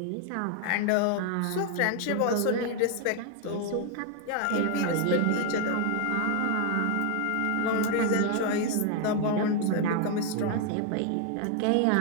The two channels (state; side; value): different; both; correlation 0.01